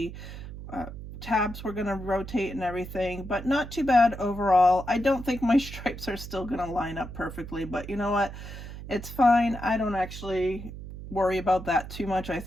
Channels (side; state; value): right; noise; hum, 11 dB below the sound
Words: uh, tabs were going to rotate and everything, but not too bad overall. I don't think my stripes are still going to line up perfectly, but you know what? It's fine. I don't actually worry about that too much. I